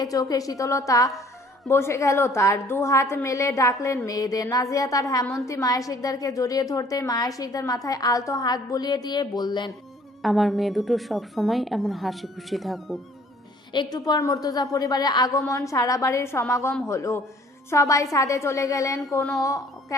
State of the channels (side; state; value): both; normal; correlation 0.56